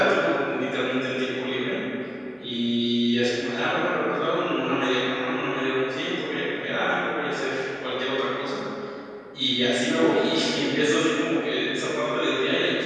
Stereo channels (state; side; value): identical; both; correlation 1.00